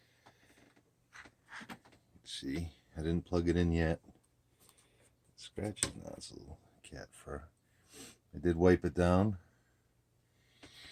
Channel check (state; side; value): identical; both; correlation 1.00